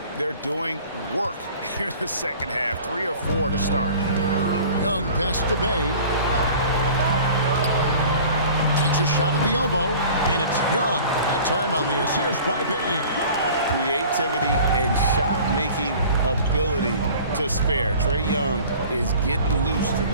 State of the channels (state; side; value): inverted; both; correlation -0.45